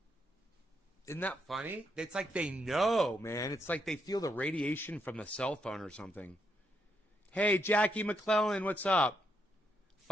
Isn't that funny? It's like they know, man. It's like they feel the radiation from the cell phone or something. Hey, Jackie McClellan, what's up?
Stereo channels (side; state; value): both; normal; correlation 0.78